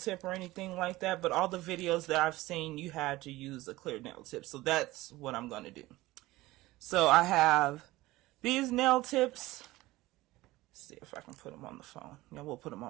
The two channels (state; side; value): quieter; left; 18.5 dB